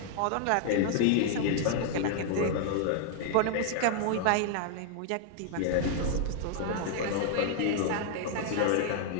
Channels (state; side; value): different; both; correlation 0.00